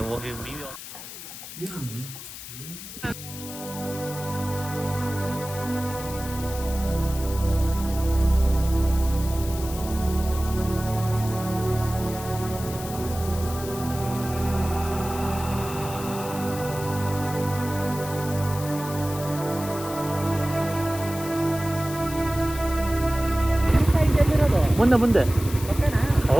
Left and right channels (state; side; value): noise; left; hiss, 12 dB below the sound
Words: ಹೋಗಿ ಮುಂದೆ ಮುಂದೆ.